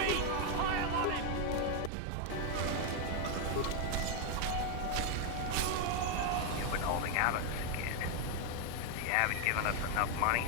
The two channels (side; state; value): both; different; correlation 0.01